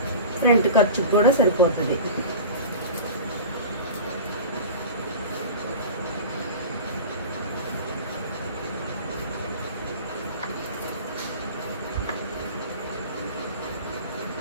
ఫ్రంట్ ఖర్చుకు కూడా సరిపోతుంది.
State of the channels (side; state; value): both; inverted; correlation -0.35